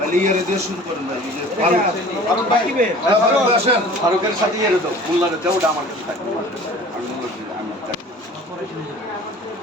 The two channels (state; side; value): normal; both; correlation 0.45